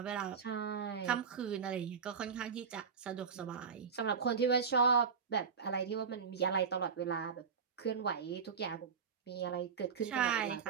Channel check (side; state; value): left; quieter; 6.0 dB